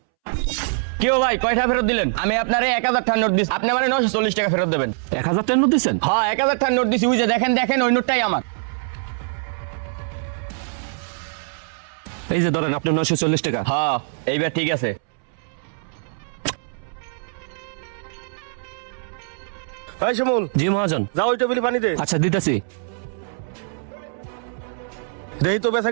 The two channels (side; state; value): left; silent; 63 dB below the other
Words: কেউ ভাই কয়টা ফেরত দিলেন? আমি আপনারে 1000 টাকা নোট দিছি, আপনি মানে 940 টাকা ফেরত দেবেন। 1000 টাকা নোট দিছেন? হ্যাঁ 1000 টাকা নোট দিছি, ওই যে দেখেন দেখেন ওই নোটটাই আমার। এই যে ধরেন আপনি 940 টাকা। হ্যাঁ এইবার ঠিক আছে। এই শিমুল, জি মহাজন। যাও ওই টেবিলে পানি দে। আচ্ছা দিতেছি। দেই তো বেচা